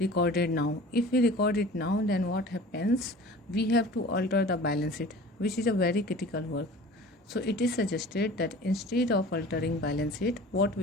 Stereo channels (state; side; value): normal; both; correlation 0.42